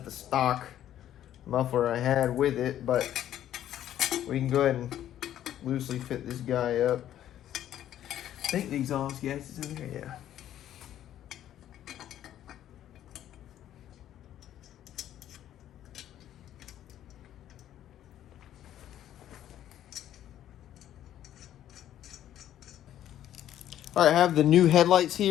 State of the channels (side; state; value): right; quieter; 11.7 dB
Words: the stock muffler I had with it, but we can go ahead and loosely fit this guy up. I think the exhaust gas is in there, yeah. All right, I have the new headlights